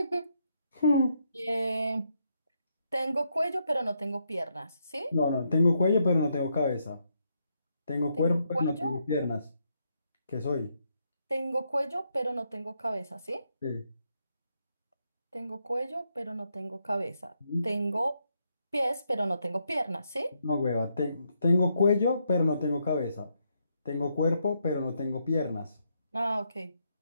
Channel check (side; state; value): both; inverted; correlation -0.78